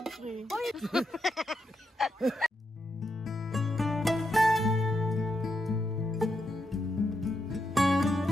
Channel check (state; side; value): normal; both; correlation 0.82